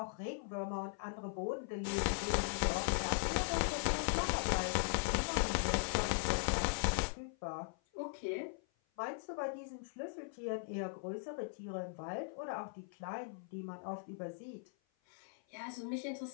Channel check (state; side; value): silent; right; 51 dB below the other